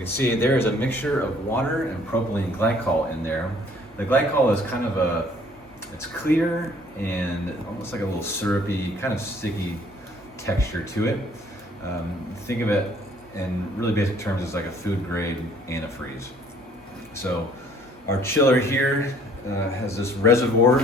see there is a mixture of water and propylene glycol in there. The glycol is kind of it's clear and almost like a little syrupy, kind of sticky texture to it. Think of it in really basic terms as like a food grade antifreeze. So our chiller here has this reservoir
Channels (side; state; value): both; normal; correlation 0.59